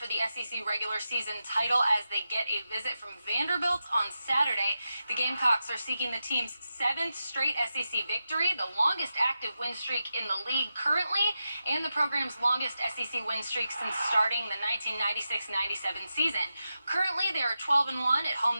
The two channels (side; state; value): both; inverted; correlation -0.90